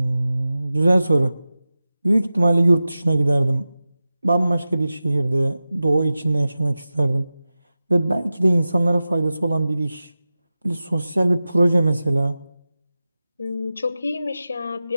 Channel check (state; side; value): inverted; both; correlation -0.95